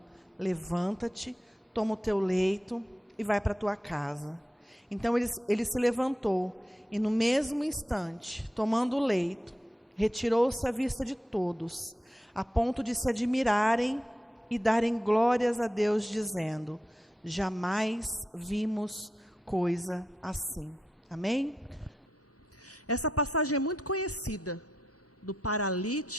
levanta-te, toma o teu leito e vai para a tua casa. Então ele se levantou e no mesmo instante, tomando o leito, retirou-se à vista de todos, a ponto de se admirarem e darem glórias a Deus, dizendo: Jamais vimos coisa assim. Amém? Essa passagem é muito conhecida, do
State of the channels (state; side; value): normal; both; correlation 0.86